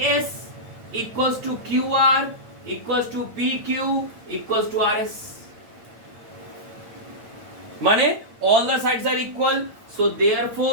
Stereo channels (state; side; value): late; left; 8.8 ms